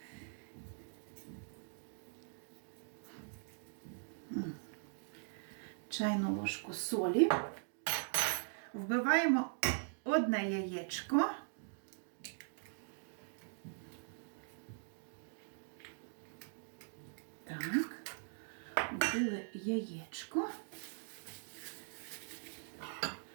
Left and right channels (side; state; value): left; silent; digital silence